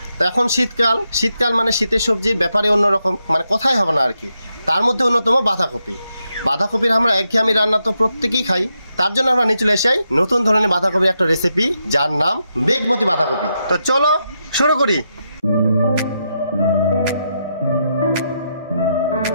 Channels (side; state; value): both; inverted; correlation -0.83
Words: তো এখন শীতকাল মানে শীতের সবজির ব্যাপারে অন্যরকম, মানে কথাই হবে না আর কি। তার মধ্যে অন্যতম বাঁধাকপির আমরা একঘেয়েমি রান্না তো প্রত্যেকেই খাই। তার জন্য আমরা নিয়ে চলে এসেছি নতুন ধরনের বাঁধাকপির একটা রেসিপি, যার নাম বেগমতি বাঁধাকপি। তো চলো শুরু করি।